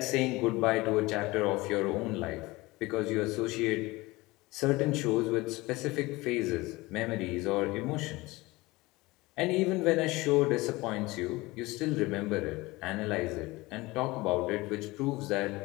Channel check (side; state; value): right; quieter; 21.4 dB